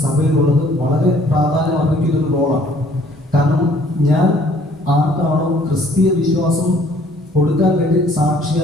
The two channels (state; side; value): normal; both; correlation 0.59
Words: സഭയിലുള്ളത് വളരെ പ്രാധാന്യം അർഹിക്കുന്ന ഒരു റോളാണ്. കാരണം ഞാൻ ആർക്കാണോ ക്രിസ്തീയ വിശ്വാസം കൊടുക്കാൻ വേണ്ടി